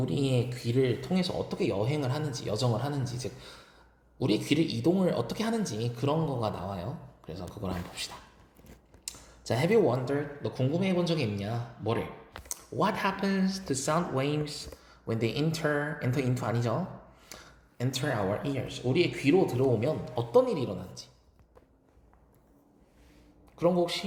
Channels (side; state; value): both; identical; correlation 1.00